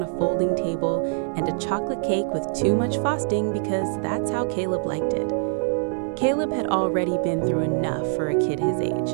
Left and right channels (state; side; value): silent; left; digital silence